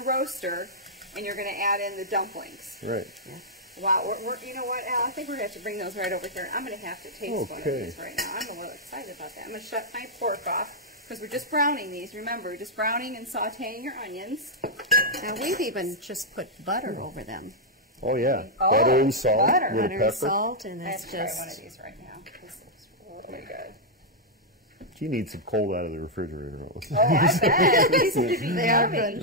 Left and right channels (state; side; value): normal; both; correlation -0.05